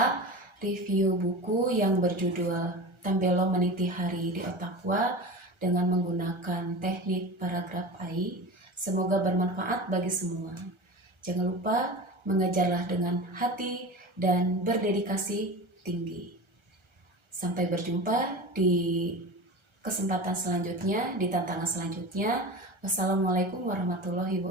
review buku yang berjudul Tambelo Meniti Hari di Otakwa dengan menggunakan teknik paragraf AI. Semoga bermanfaat bagi semua. Jangan lupa mengajarlah dengan hati dan berdedikasi tinggi. Sampai berjumpa di kesempatan selanjutnya, di tantangan selanjutnya. Wassalamualaikum warahmatullahi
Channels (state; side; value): late; left; 1.3 ms